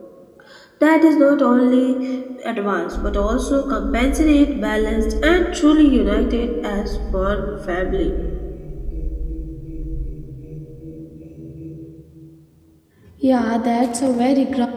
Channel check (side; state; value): both; identical; correlation 1.00